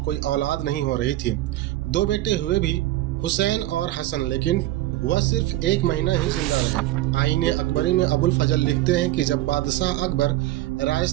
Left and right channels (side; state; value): left; quieter; 15.7 dB